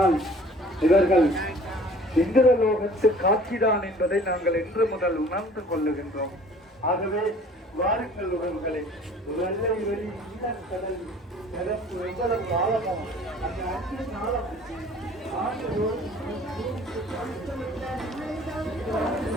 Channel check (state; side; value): normal; both; correlation 0.50